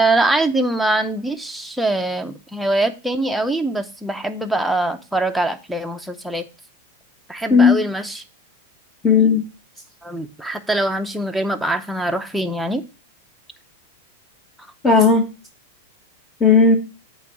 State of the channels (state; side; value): normal; both; correlation 0.43